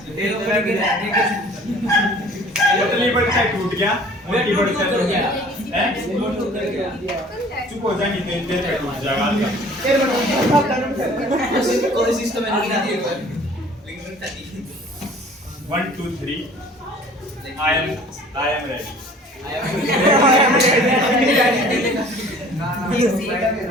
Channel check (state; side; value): normal; both; correlation 0.50